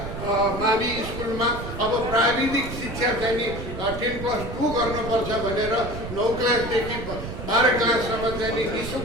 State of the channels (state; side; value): noise; right; rumble, 8 dB below the sound